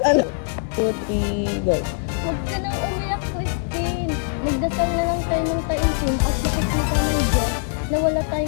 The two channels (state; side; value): silent; right; 64 dB below the other